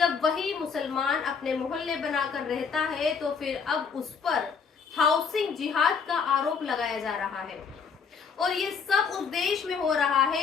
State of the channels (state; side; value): quieter; right; 5.9 dB